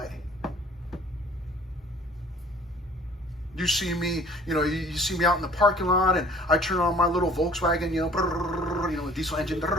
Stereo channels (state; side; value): normal; both; correlation 0.52